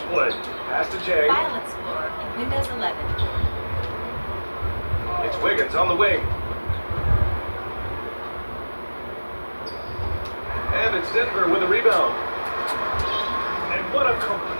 play. Pass to Jay. File Explorer in Windows 11. It's Wiggins on the wing. And it's Denver with a rebound. And what a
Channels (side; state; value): both; inverted; correlation -1.00